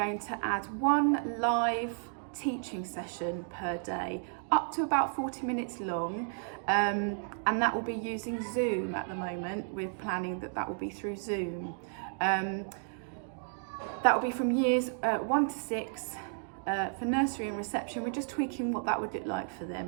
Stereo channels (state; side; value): silent; left; digital silence